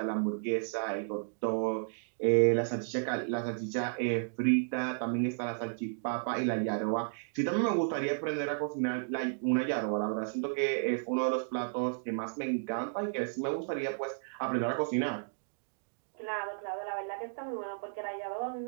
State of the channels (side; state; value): left; silent; digital silence